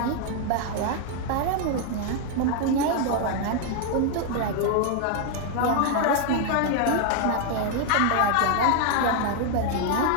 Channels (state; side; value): different; both; correlation 0.00